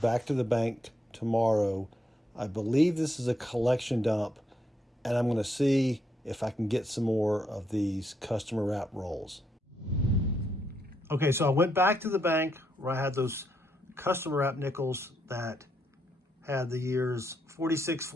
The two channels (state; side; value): normal; both; correlation 0.78